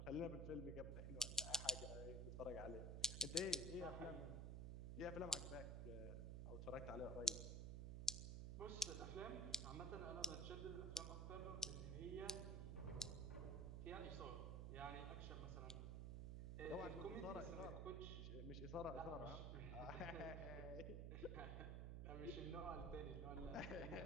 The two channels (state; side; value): noise; right; hum, 2 dB below the sound